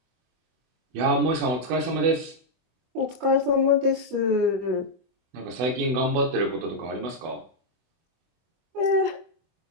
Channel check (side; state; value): left; late; 24 ms